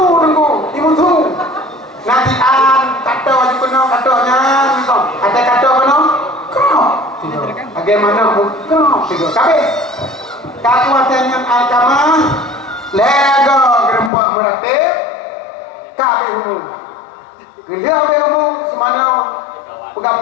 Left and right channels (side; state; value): right; drops out; at 14.1 s